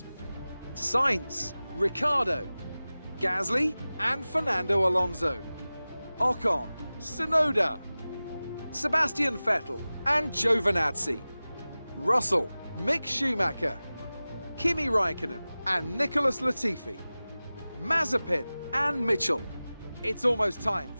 Sainz, Ricciardo, Gasly and Fernando Alonso, Ocon, Tsunoda, Sebastian Vettel and Giovinazzi, Russell, Mick Schumacher, Kimi Raikkonen and Nicholas Latifi, Mazepin and Mitchell. It's almost time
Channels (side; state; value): both; inverted; correlation -0.97